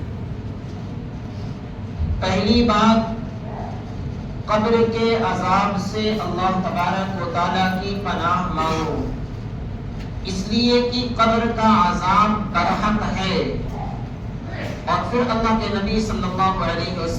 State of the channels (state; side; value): identical; both; correlation 1.00